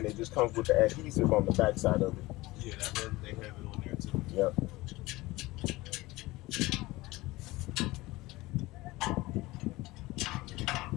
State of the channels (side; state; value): right; quieter; 20.0 dB